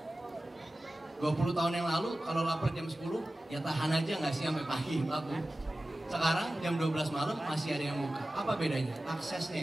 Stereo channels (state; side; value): normal; both; correlation 0.96